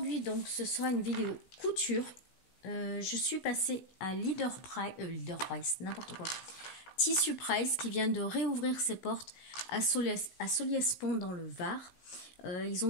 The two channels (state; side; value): late; right; 16 ms